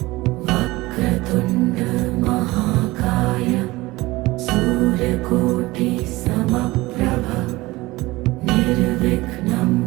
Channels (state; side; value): quieter; left; 20.2 dB